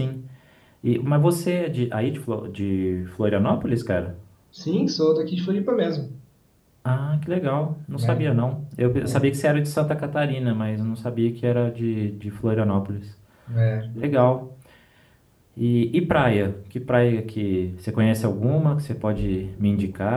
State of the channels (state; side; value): identical; both; correlation 1.00